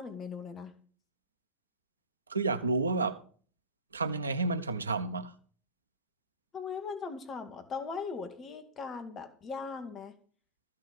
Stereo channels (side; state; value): both; inverted; correlation -0.39